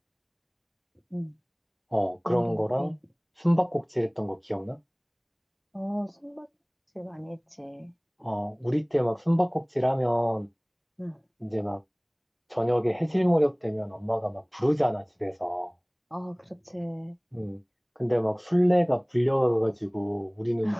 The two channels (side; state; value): both; identical; correlation 1.00